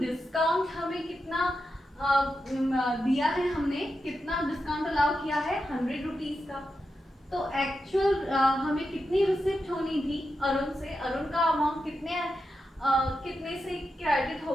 हमें कितना दिया है, हमने कितना डिस्काउंट अलाउ किया है? 100 रुपीज का। तो एक्चुअल हमें कितनी रिसिप्ट होनी थी अरुण से? अरुण का अमाउंट कितने से क्रेडिट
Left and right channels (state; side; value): normal; both; correlation 0.88